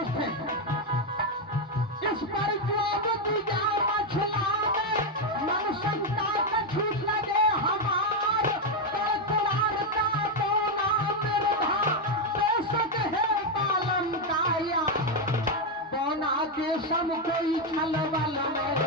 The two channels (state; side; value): normal; both; correlation 0.05